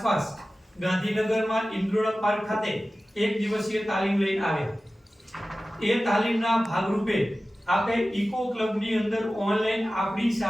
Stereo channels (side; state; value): both; normal; correlation 0.96